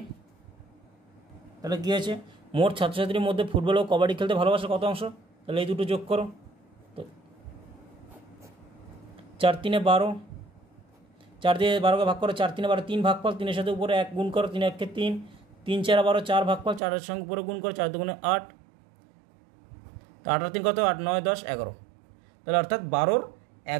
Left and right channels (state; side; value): drops out; left; at 16.8 s